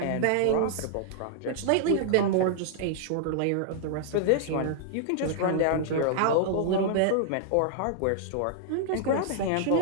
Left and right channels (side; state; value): both; different; correlation -0.01